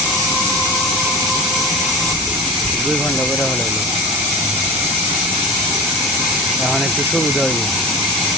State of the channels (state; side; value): normal; both; correlation 0.31